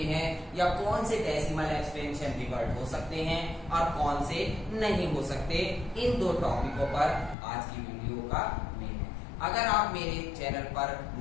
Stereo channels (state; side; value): drops out; right; at 7.4 s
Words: हैं या कौन से डेसिमल एक्सपेंशन रिवर्ट हो सकते हैं और कौन से नहीं हो सकते, इन दो टॉपिकों पर आज की वीडियो का मेन है। अगर आप मेरे चैनल पर